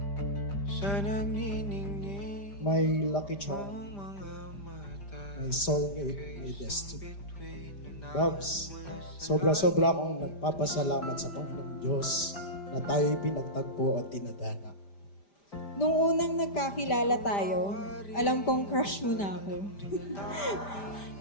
sa nagniningning. My lucky charm, my soulmate, my destiny. Babs, sobra-sobra akong nagpapasalamat sa Panginoong Diyos na tayo'y pinagtagpo at tinadhana. Nung unang nagkakilala tayo, alam kong crush mo na ako.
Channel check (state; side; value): late; right; 5.0 ms